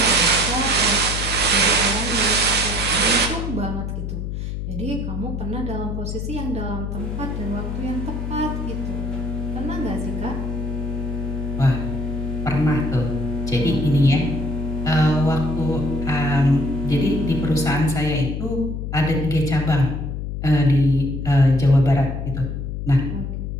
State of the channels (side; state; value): left; noise; hum, 4 dB below the sound